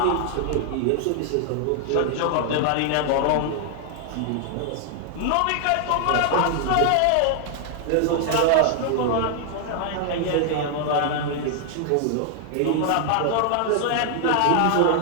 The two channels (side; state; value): both; different; correlation 0.00